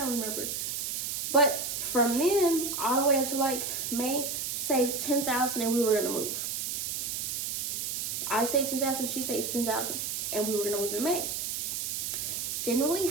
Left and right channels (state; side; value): noise; right; hiss, 2 dB below the sound